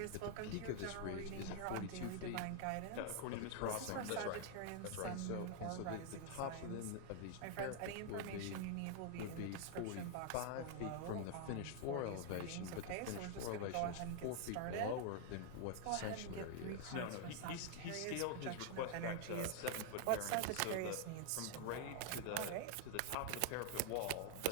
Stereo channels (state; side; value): different; both; correlation 0.00